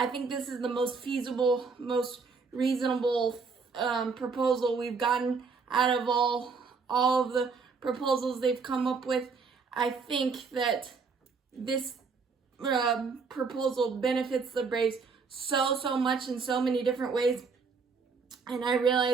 think this is the most feasible, most reasonable proposal we've gotten out of all of the proposals they've come up with. I think that this proposal benefits the Braves so much in so many different ways. And I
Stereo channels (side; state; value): left; quieter; 5.0 dB